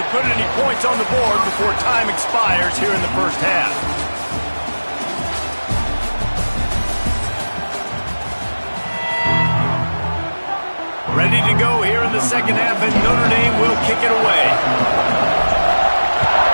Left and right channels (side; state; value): both; inverted; correlation -1.00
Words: put any points on the board before time expires here in the first half. Ready to go here in the second half, and Notre Dame will kick it away.